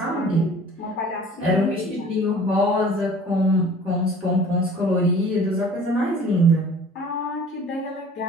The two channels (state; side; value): normal; both; correlation 0.47